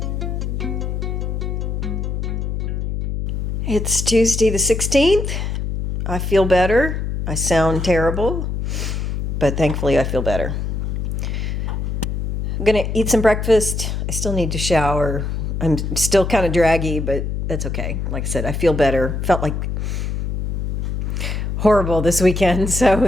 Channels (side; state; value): left; noise; hum, 2 dB below the sound